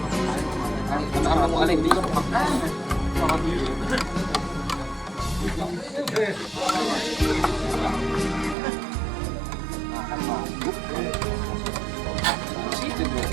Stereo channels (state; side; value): drops out; left; at 8.6 s